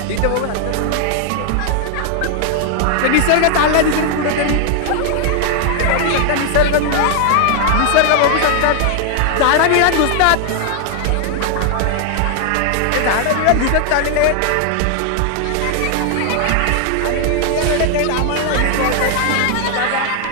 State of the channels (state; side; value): different; both; correlation 0.00